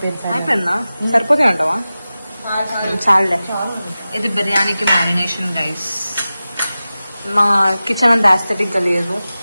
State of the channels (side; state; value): both; inverted; correlation -0.95